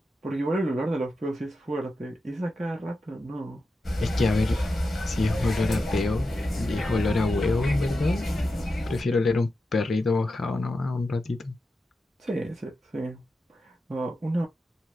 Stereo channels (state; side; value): normal; both; correlation 0.90